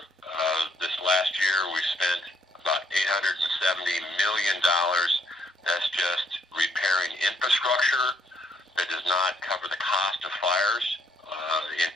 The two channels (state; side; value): normal; both; correlation 0.70